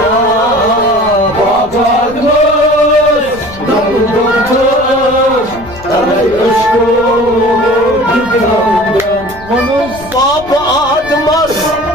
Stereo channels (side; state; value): left; noise; rumble, 19 dB below the sound